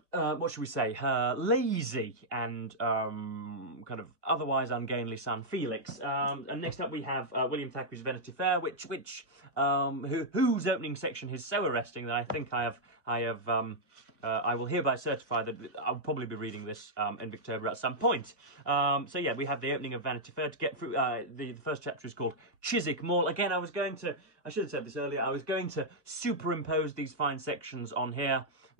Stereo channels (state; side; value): late; left; 1.0 ms